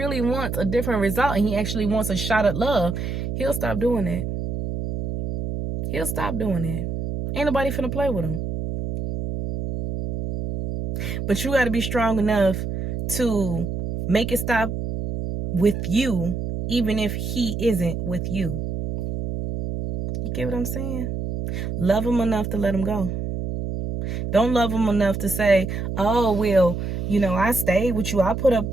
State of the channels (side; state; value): right; noise; hum, 3 dB below the sound